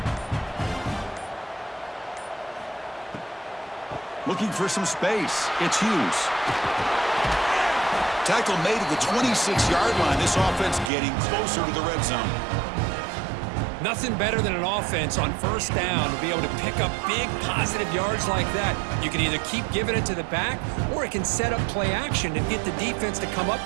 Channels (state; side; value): drops out; left; at 10.9 s